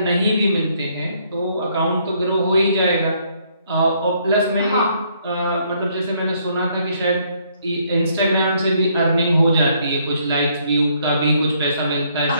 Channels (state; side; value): inverted; both; correlation -0.68